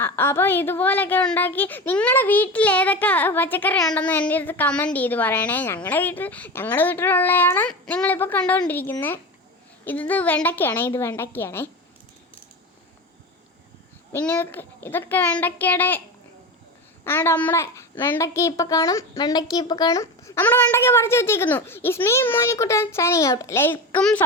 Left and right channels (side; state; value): both; normal; correlation 0.25